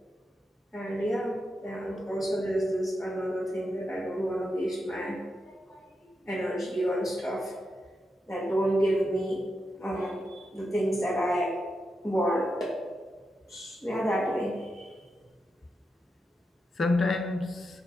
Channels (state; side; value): normal; both; correlation 0.87